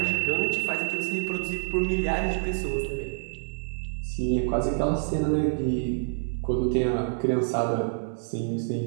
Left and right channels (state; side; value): silent; left; digital silence